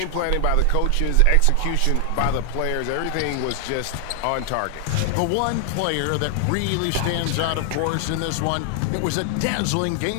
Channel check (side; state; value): both; different; correlation 0.00